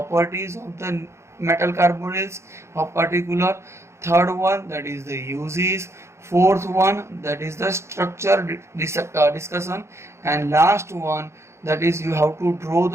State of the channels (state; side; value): late; left; 0.13 ms